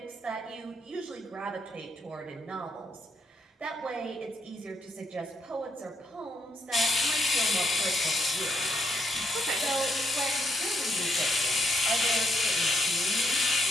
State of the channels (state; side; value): normal; both; correlation 0.76